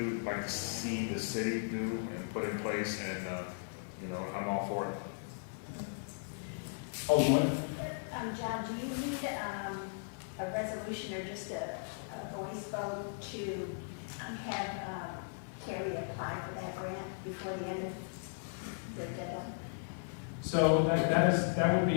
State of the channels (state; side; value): silent; right; digital silence